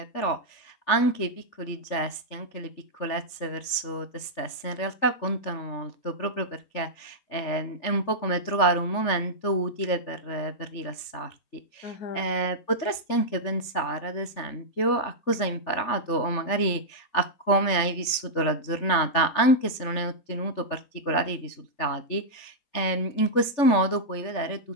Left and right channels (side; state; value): right; late; 3.5 ms